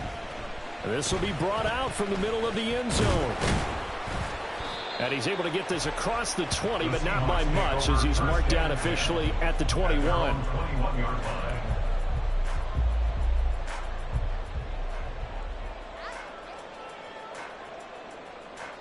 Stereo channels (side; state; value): both; identical; correlation 1.00